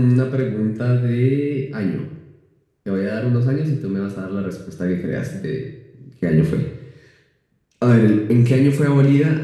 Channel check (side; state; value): both; identical; correlation 1.00